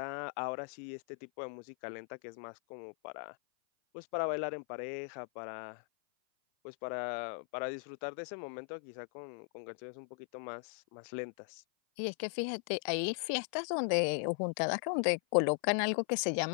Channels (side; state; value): right; silent; 53 dB below the other